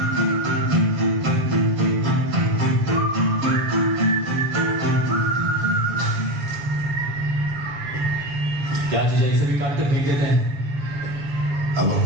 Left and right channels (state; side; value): late; left; 7.1 ms